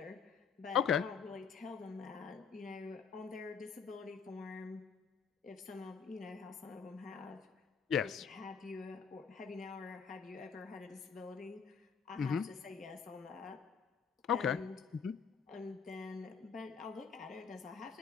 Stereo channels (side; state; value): right; quieter; 6.3 dB